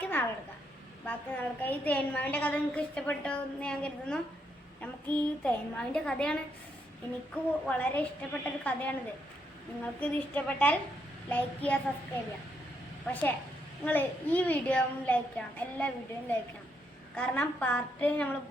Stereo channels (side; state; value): both; normal; correlation 0.77